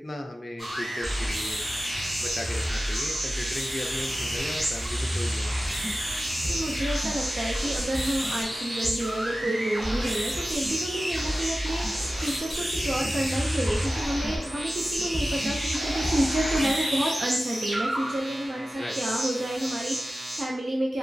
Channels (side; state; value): both; normal; correlation 0.95